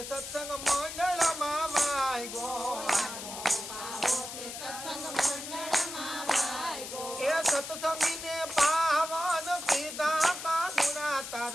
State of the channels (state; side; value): noise; left; hiss, 9 dB below the sound